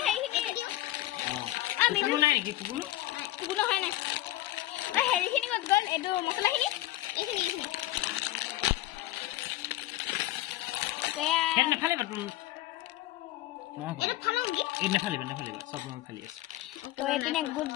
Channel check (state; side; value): quieter; right; 16.2 dB